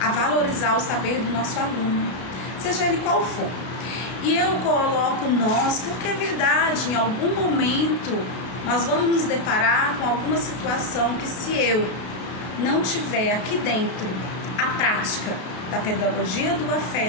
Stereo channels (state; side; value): late; right; 33 ms